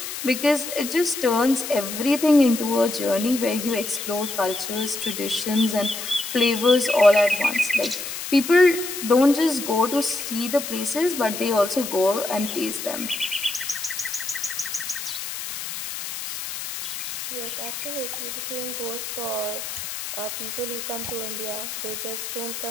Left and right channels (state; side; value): noise; left; hiss, 7 dB below the sound